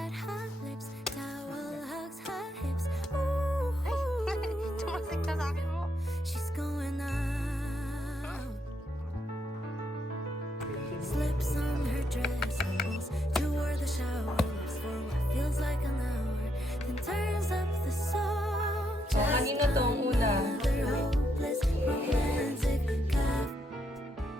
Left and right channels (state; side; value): normal; both; correlation 0.77